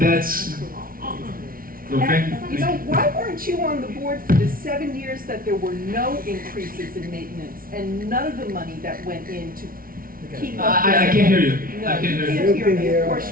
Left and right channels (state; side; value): late; left; 0.42 ms